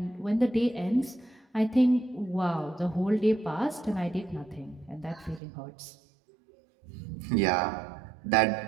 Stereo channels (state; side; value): drops out; left; at 5.4 s